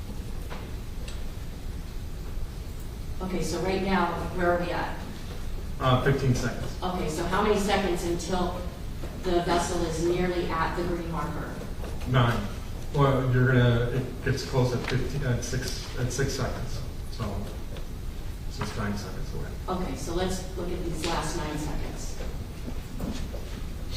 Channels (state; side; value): identical; both; correlation 1.00